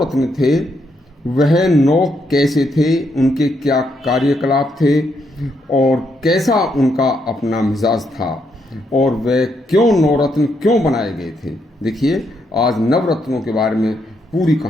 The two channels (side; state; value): both; normal; correlation 0.77